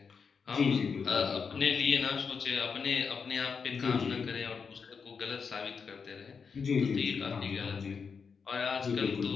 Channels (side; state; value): right; quieter; 5.8 dB